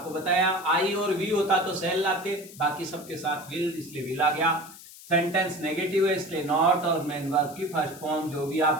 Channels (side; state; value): left; noise; hiss, 18 dB below the sound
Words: बताया आई और वी होता तो सेल लाते, बाकी सबके साथ विल, इसलिए विल आ गया। सेंटेंस नेगेटिव है इसलिए नॉट, और मेन वर्ब की फर्स्ट फॉर्म जो भी